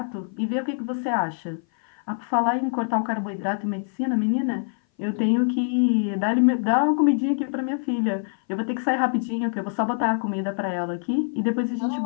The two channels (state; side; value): silent; right; 57 dB below the other